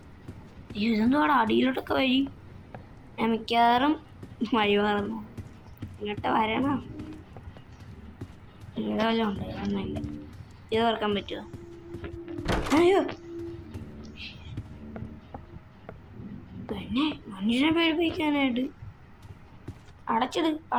അയ്യോ, ഇതെന്തുവാടാ അടിയിലോട്ടൊക്കെ വഴി? ഞാൻ മിക്കവാറും വഴി മാറുന്നു. ഇങ്ങോട്ട് വരണം. ഇവിടെ വല്ലതും ഉണ്ട്? ഒന്നുമില്ല. ഇത് തുറക്കാൻ പറ്റുമോ? അയ്യോ, പിന്നെ മനുഷ്യനെ പേടിപ്പിക്കാനായിട്ട്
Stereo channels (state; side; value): identical; both; correlation 1.00